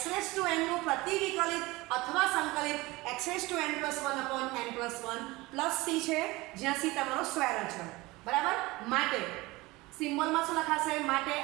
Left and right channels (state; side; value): quieter; left; 21.4 dB